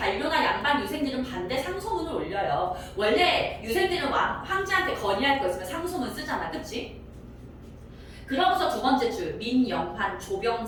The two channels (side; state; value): both; identical; correlation 1.00